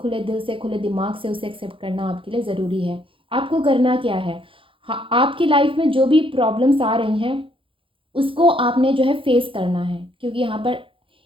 दिल से, खुले दिमाग से उसे एक्सेप्ट करना आपके लिए ज़रूरी है। आपको करना क्या है, हाँ, आपकी लाइफ में जो भी प्रॉब्लम्स आ रही हैं उसको आपने जो है फेस करना है, क्योंकि यहाँ पर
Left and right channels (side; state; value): left; late; 0.25 ms